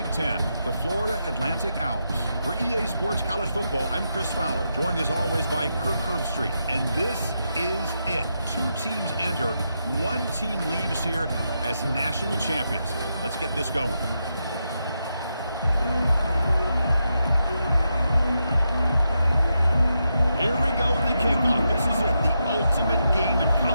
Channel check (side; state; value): both; inverted; correlation -0.84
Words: Ten, the Florida Atlantic Owls. For EA Sports College Football, I'm Chris Fowler, joined as always by Kirk Herbstreit, and this is it. 2 teams enter, 1 team leaves here as national champions. Let's get this going. Here we go with the kickoff. This is it, the ultimate game in